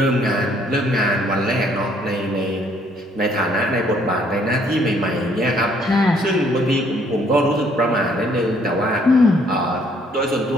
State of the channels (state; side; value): normal; both; correlation 0.65